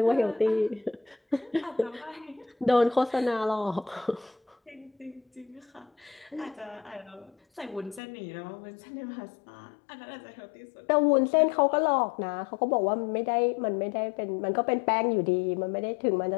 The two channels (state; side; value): drops out; right; at 8.0 s